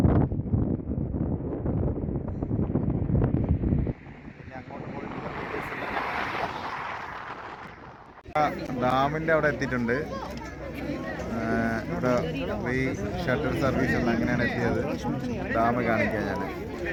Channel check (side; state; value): both; identical; correlation 1.00